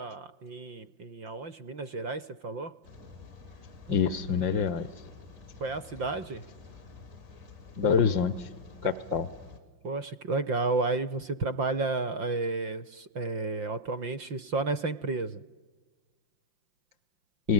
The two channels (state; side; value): late; left; 5.7 ms